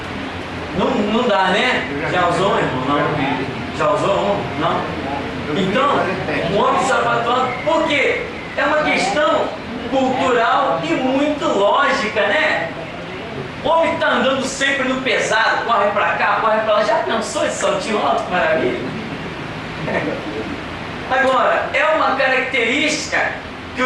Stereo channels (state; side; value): identical; both; correlation 1.00